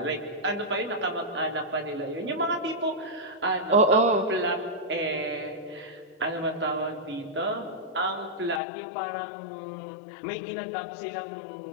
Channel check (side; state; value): right; drops out; at 8.6 s